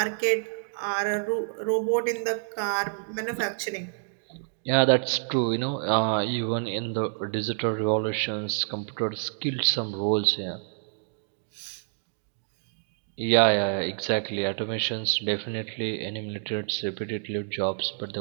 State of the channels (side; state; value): left; silent; digital silence